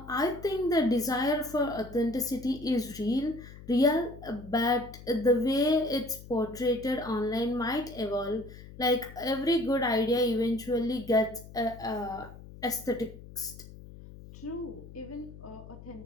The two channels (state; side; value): noise; left; hum, 17 dB below the sound